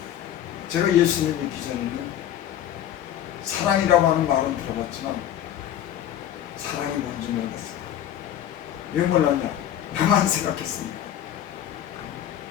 제가 예수님 믿기 전에는 사랑이라고 하는 말은 들어봤지만 사랑이 뭔지 몰랐어요. 왜 몰랐냐? 나만 생각했습니다.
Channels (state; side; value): quieter; right; 11.1 dB